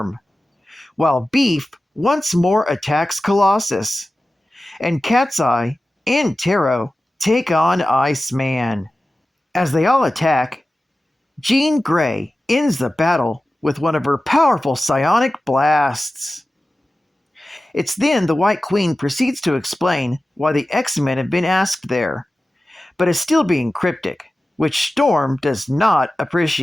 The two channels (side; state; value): both; normal; correlation 0.95